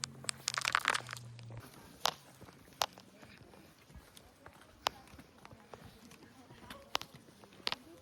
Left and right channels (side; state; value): both; identical; correlation 1.00